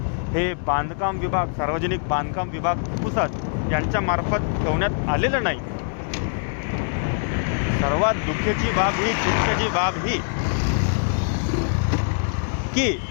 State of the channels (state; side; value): silent; right; 63 dB below the other